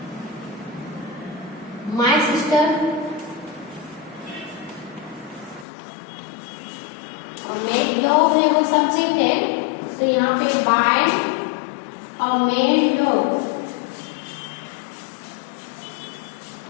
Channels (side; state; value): right; drops out; at 5.7 s